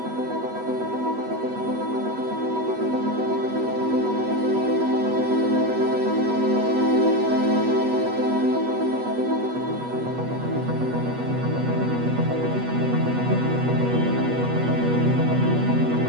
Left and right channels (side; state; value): left; late; 8.2 ms